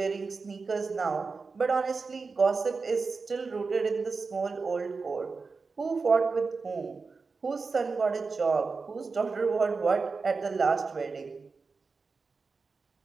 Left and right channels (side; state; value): left; quieter; 4.5 dB